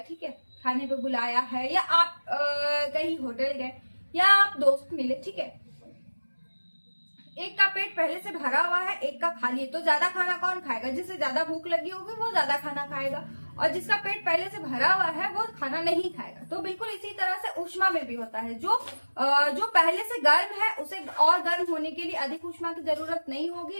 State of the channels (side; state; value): both; inverted; correlation -1.00